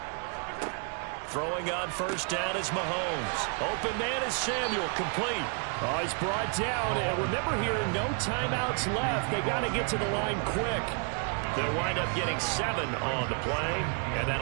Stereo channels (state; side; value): quieter; left; 39.5 dB